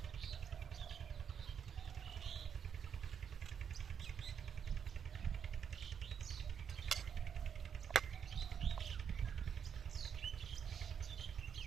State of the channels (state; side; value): quieter; left; 7.6 dB